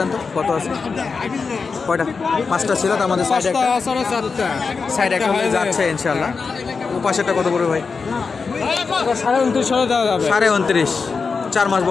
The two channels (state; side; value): quieter; right; 4.9 dB